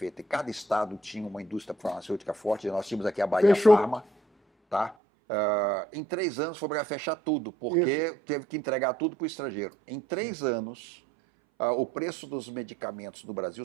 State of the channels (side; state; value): left; drops out; at 5.0 s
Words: e cada estado tinha uma indústria farmacêutica forte, nós tínhamos aqui a Bahia Fechou. Farma, tá? Em 3 anos foi obrigado a fechar tudo, porque teve que entregar tudo para o estrangeiro. Em 3 anos, o preço dos medicamentos no Brasil